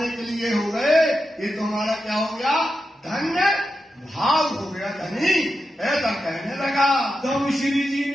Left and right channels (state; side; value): normal; both; correlation 0.89